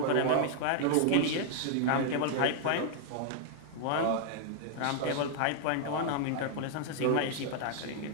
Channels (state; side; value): different; both; correlation 0.00